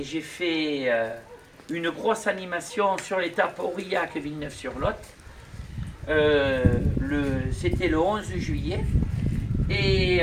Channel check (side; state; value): both; identical; correlation 1.00